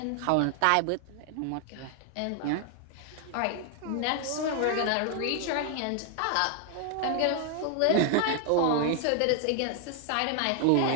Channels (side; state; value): both; different; correlation 0.00